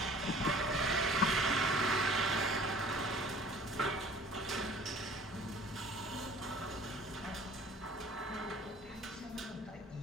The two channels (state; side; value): normal; both; correlation 0.49